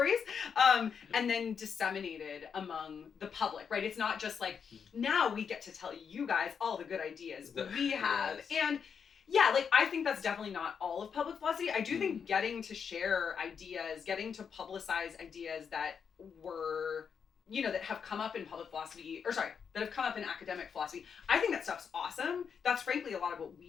and then disseminated among the public, right? It's not just like, now we get to tell you guys all the good ideas we have. And I think that's definitely not all of public philosophy. I do think getting to share ideas, getting to publicize ideas that were, that have come up in public philosophy, that have come up in academic philosophy. I think that stuff's awesome. That's frankly a lot of what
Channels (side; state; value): right; quieter; 6.7 dB